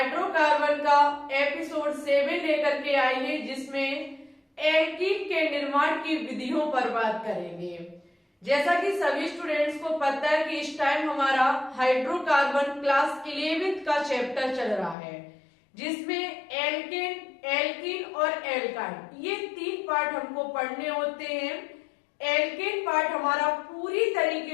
का एपिसोड 7 लेकर के आए हैं, जिसमें एल्कीन के निर्माण की विधियों पर बात करेंगे। जैसा कि सभी स्टूडेंट्स को पता है कि इस टाइम हमारा हाइड्रोकार्बन क्लास 11th का चैप्टर चल रहा है, जिसमें एल्कीन और एल्काइन ये 3 पार्ट हमको पढ़ने होते हैं। एल्केन पार्ट हमारा पूरी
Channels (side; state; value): right; drops out; at 15.0 s